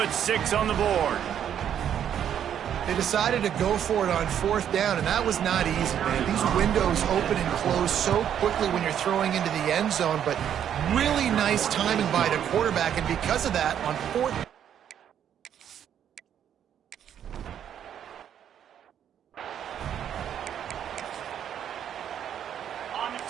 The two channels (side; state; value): left; quieter; 9.4 dB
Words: 6 on the board. They decided to go for it on 4th down, and that was not easy, man. These windows open and close so quickly when you're throwing into the end zone, but really nice timing by the quarterback, and because of that, on 4th...